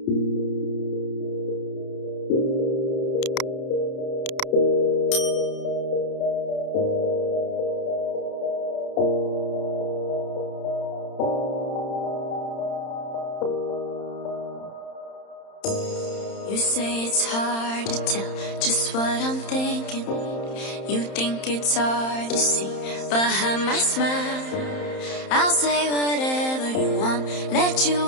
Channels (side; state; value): right; late; 31 ms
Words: say it's hard to tell just what I'm thinking. You think it's hard to see behind my smile. I'll say whatever you want, let you